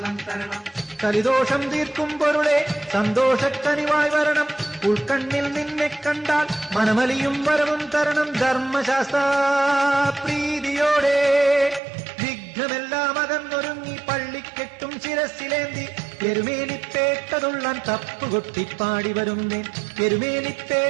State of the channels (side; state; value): left; drops out; at 11.8 s